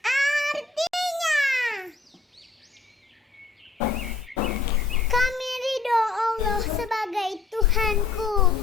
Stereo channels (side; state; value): right; quieter; 4.0 dB